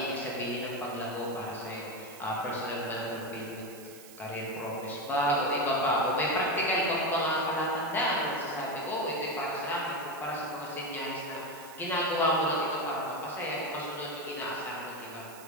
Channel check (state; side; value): noise; right; hiss, 18 dB below the sound